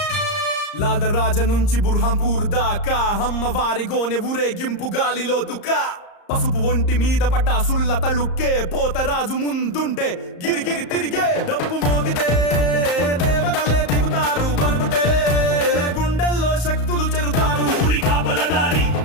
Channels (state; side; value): late; right; 34 ms